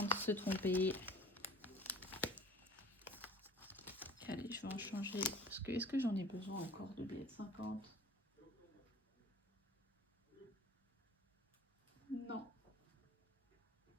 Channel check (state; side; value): normal; both; correlation 0.45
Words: de se tromper. Allez, je vais en changer. Parce que est-ce que j'en ai besoin encore de billets de 50? Non.